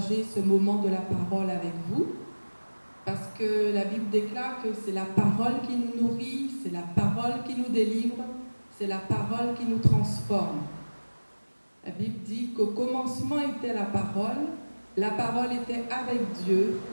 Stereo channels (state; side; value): inverted; both; correlation -1.00